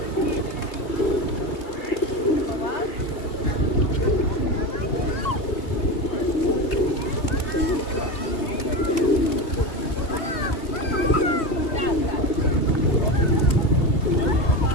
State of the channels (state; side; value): late; right; 2.8 ms